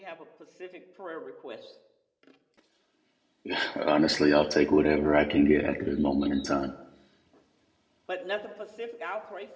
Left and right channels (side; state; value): both; identical; correlation 1.00